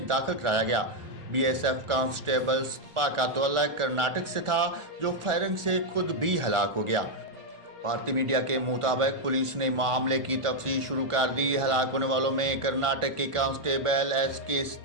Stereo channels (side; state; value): left; late; 1.4 ms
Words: داخل کرایا گیا۔ BSF کانسٹیبل سپا کا تعلق کرناٹک سے تھا، جو فائرنگ سے خود بھی ہلاک ہو گیا۔ بھارتی میڈیا کے مطابق پولیس نے معاملے کی تفتیش شروع کر دی۔ ہلاک ہونے والوں میں کرناٹک کے کانسٹیبل SK